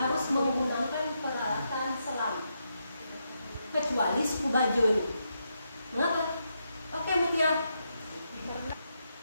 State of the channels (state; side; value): inverted; both; correlation -0.82